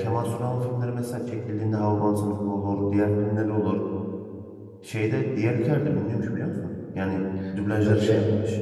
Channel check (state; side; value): identical; both; correlation 1.00